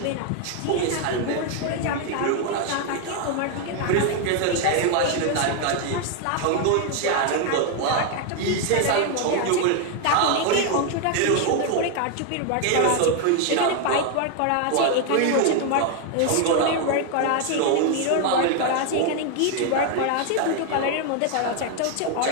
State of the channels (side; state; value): both; different; correlation 0.01